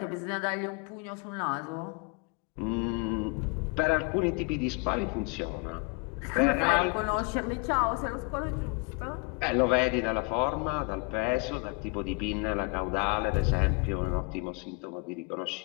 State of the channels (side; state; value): right; quieter; 30.4 dB